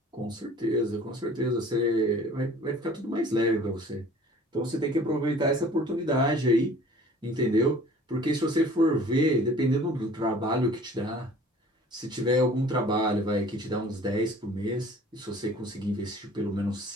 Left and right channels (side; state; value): both; normal; correlation 0.49